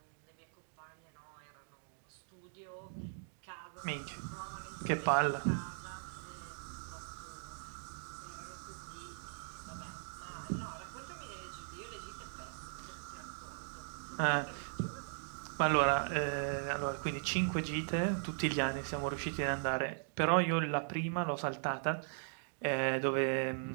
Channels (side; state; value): left; silent; digital silence